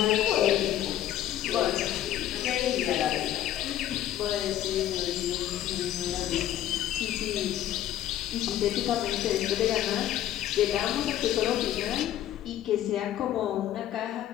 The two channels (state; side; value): quieter; right; 12.2 dB